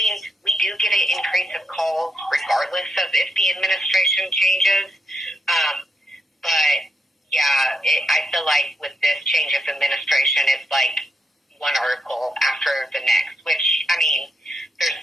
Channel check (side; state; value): both; normal; correlation 0.82